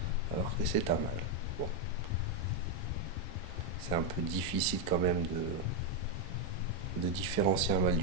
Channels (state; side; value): normal; both; correlation 0.02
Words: alors que c'est un mâle. Bon, c'est un peu difficile quand même de différencier un mâle